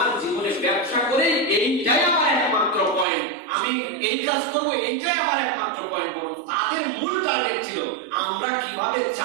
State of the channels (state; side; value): drops out; left; at 3.1 s